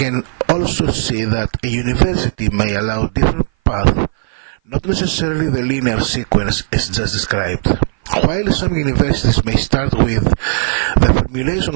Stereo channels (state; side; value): silent; left; 57 dB below the other